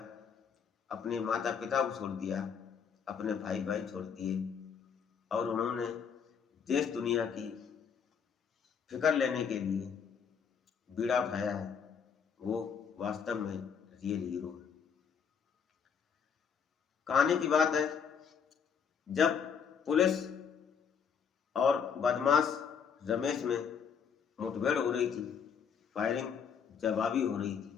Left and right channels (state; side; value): quieter; right; 6.9 dB